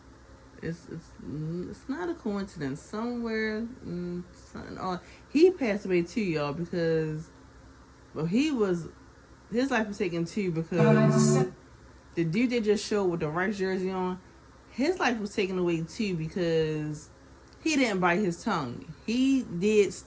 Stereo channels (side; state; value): both; identical; correlation 1.00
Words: It's not a coincidence. Somewhere, he passed away too, y'all, because his life was taken too because the dude they just showed with the Rice jersey on, his life was taken away too because he didn't bite his tongue. He did